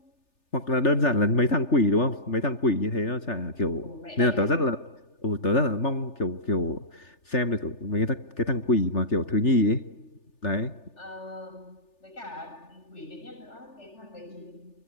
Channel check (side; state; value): right; late; 3.4 ms